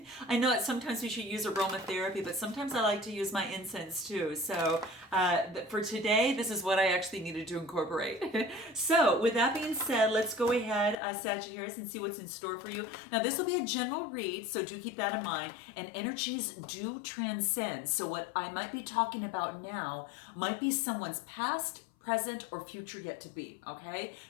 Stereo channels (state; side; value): drops out; right; at 11.0 s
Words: I know that sometimes we should use aromatherapy, but sometimes I like to use my incense too. So for today, this is what I actually needed to incorporate. So with that being said, let's go ahead, Sagittarius, and see what's in store for you. Now, this will be a general read, so do keep that in mind. And energies do transcend. So what I might be talking about now might be someone's past, present, or future yet to be, okay?